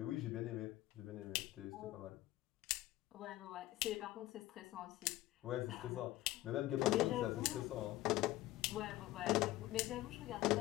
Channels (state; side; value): quieter; right; 16.5 dB